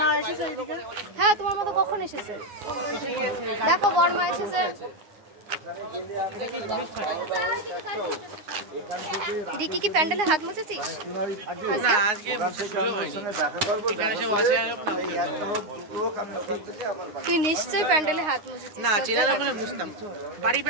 হ্যাঁ তোমার মতো কখন এসেছে? দেখো বড়মা এসেছে। রিকি কি প্যান্ডেলে হাত মুছেছিস? তুই নিশ্চয়ই প্যান্ডেলে হাত মুছেছিস। না চেনার ওখানে মুছতাম, বাড়ি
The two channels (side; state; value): left; late; 9.6 ms